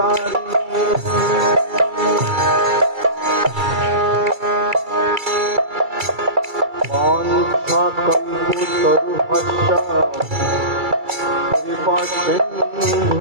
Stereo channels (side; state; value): left; late; 2.3 ms